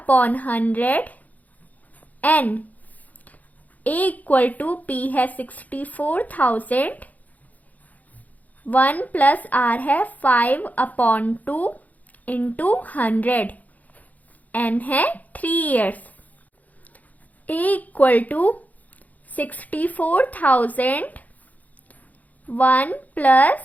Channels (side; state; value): right; late; 0.078 ms